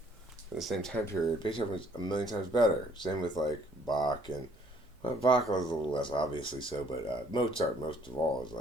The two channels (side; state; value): right; noise; hum, 28 dB below the sound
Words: in the same time period, Beethoven's a million times better. Same with like Bach and Bach was a little less obviously so, but Mozart most of all is